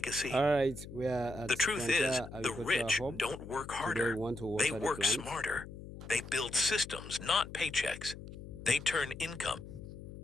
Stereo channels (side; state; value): left; noise; hum, 13 dB below the sound